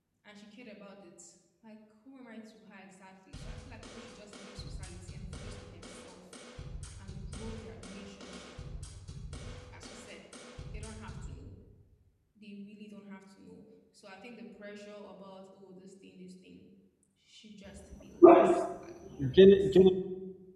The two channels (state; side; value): identical; both; correlation 1.00